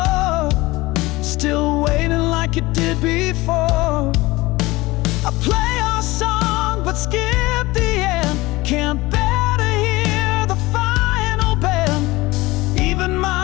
still waiting like it did before. I play our song but skip the end, can't bear to hear the final bend. Even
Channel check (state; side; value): quieter; right; 20.6 dB